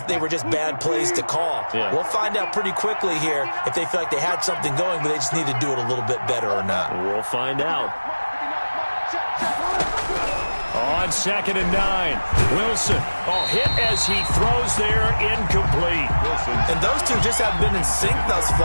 they were just bad plays to call? Yeah. We'll find out pretty quickly here if they feel like they had something going, but they just need to do it a little bit better or not. We'll find out. On 2nd and 9, Wilson. Oh, hit as he throws there, incomplete. And those two just haven't been in sync thus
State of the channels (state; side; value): inverted; both; correlation -1.00